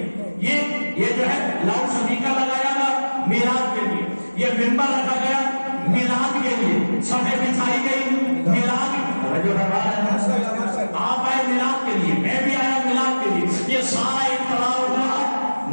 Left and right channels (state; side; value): inverted; both; correlation -1.00